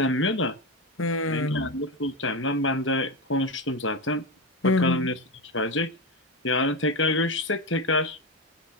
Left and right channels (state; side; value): normal; both; correlation 0.15